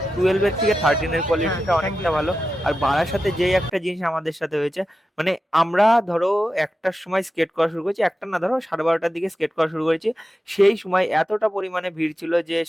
12-এর থেকে 13-এর কোয়ালিটিটা অনেকটা ভালো। আর বারাসাতে যেই একটা জিনিস আমাদের সাথে হয়েছে, মানে আমরা ধরো 1টার সময় স্কেট করা শুরু করেছি, একটা না ধরো 12:30-টার দিকে স্কেট করা শুরু করেছি। সেই সময় এতটা পরিমাণে ভিড় ছিল যে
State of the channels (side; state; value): both; normal; correlation 0.91